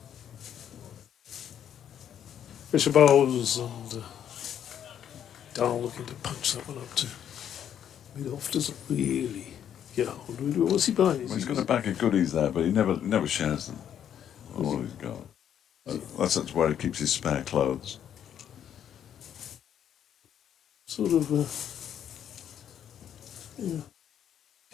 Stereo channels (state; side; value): quieter; right; 9.6 dB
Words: Fisher bowls and Dahl looking to punch that one up to mid-off. Doesn't really get hold of it. What's he buying? Well, he's got a bag of goodies there, but he never shares them. All he's got. That's where he keeps his spare clothes. Sort of, yeah.